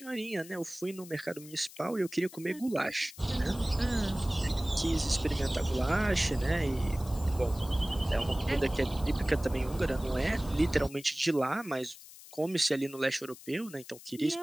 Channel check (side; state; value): left; noise; hiss, 18 dB below the sound